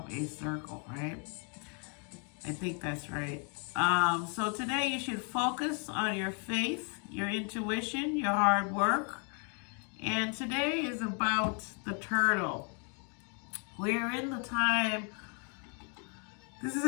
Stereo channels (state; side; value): quieter; right; 39.3 dB